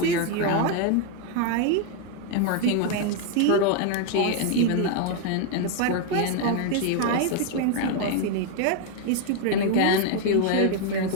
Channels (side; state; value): both; different; correlation 0.01